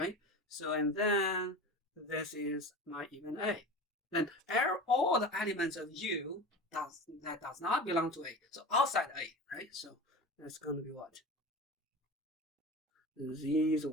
So, and then this is my even A. Then all the elements of U that does not belong to A. So outside A, right? So that's going to be what? These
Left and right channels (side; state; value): both; normal; correlation 0.32